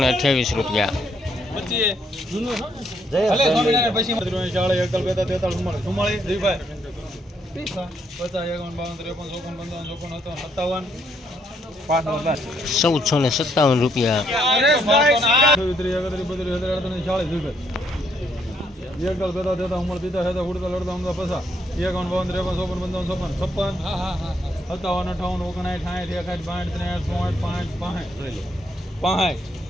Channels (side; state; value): both; normal; correlation 0.72